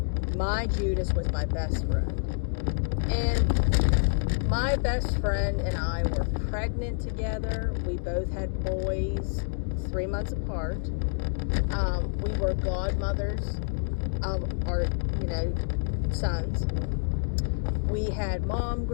my Judas was my best friend. And my best friend and I were pregnant together. We both had boys 3 months apart. We were godmothers of our, sons. We had mom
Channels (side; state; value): right; silent; digital silence